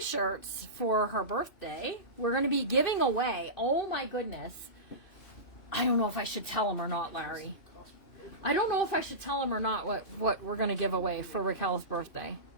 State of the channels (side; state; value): right; late; 3.0 ms